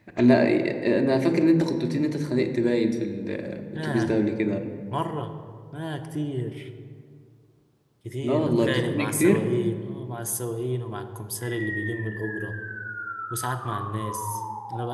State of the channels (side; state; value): both; identical; correlation 1.00